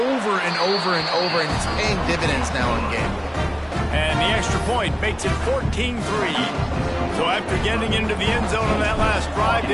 and over and over, and it's paying dividends now in game. And the extra point makes it 14-3. So after getting into the end zone on that last drive,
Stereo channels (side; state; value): both; identical; correlation 1.00